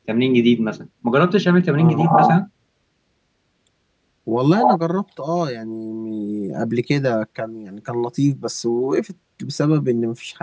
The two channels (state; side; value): identical; both; correlation 1.00